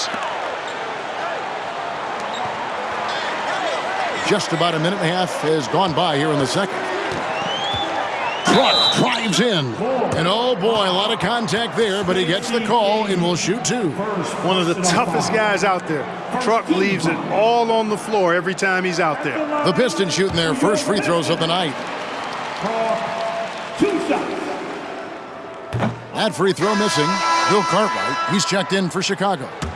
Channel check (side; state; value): both; identical; correlation 1.00